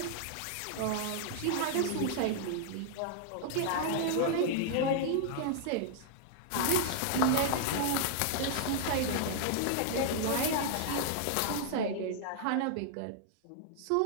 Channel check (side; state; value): both; different; correlation -0.01